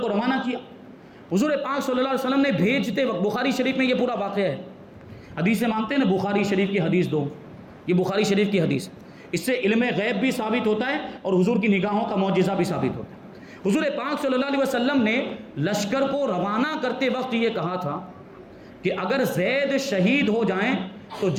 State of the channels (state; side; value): identical; both; correlation 1.00